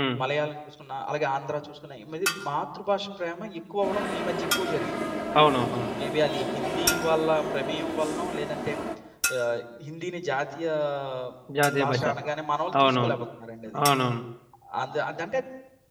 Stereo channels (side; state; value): both; identical; correlation 1.00